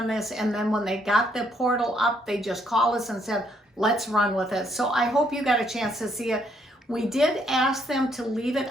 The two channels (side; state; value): both; normal; correlation 0.71